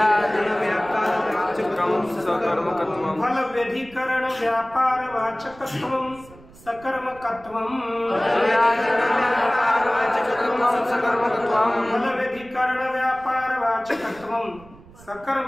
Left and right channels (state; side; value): noise; right; rumble, 23 dB below the sound